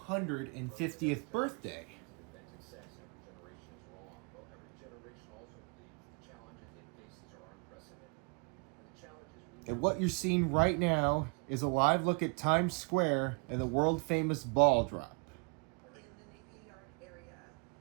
birthday. And what you're seeing right now is a live look at Times Square and the world-famous ball drop.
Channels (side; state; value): left; quieter; 33.5 dB